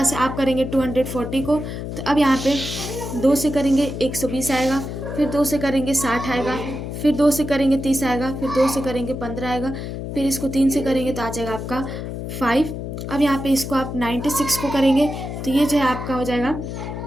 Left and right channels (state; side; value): noise; left; hum, 6 dB below the sound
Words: से आप करेंगे 240 को। तो अब यहाँ पे 2 से करेंगे 120 आएगा, फिर 2 से करेंगे 60 आएगा, फिर 2 से करेंगे 30 आएगा, फिर 2 से करेंगे 15 आएगा, फिर इसको 3 से करेंगे तो आ जाएगा आपका 5। अब यहाँ पे इसको आप 96 को करेंगे तो ये जो है आपका हो जाएगा